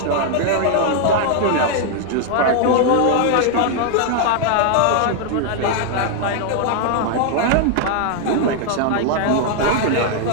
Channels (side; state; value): both; different; correlation 0.00